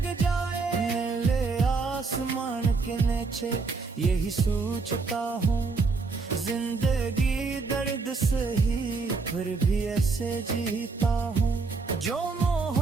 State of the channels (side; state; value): left; quieter; 4.3 dB